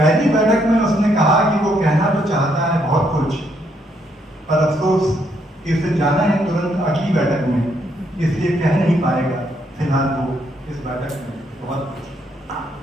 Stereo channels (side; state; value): both; normal; correlation 0.73